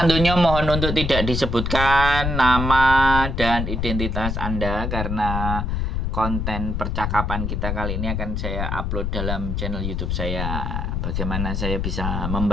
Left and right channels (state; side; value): noise; left; rumble, 1 dB below the sound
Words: Mohon untuk tidak disebutkan nama dan identitas Anda karena konten percakapan kita kali ini akan saya upload dalam channel YouTube saya. Bagaimana saya bisa